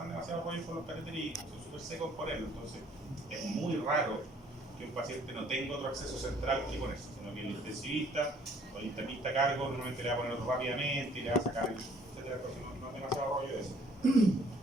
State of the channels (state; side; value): normal; both; correlation 0.59